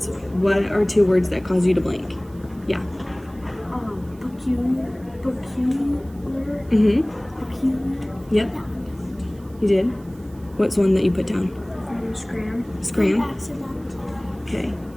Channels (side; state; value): right; noise; hiss, 28 dB below the sound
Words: What are 2 words that cause you to blink? Yeah. Peculiar. Mm-hmm. Peculiar. Yep. You did? What's one that you put down? Scram. Scram? Accident. Okay.